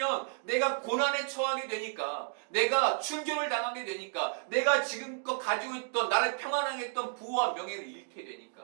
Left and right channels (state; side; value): silent; left; 56 dB below the other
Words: 내가 고난에 처하게 되니까, 내가 출교를 당하게 되니까, 내가 지금껏 가지고 있던, 나를 평안하게 했던 부와 명예를 잃게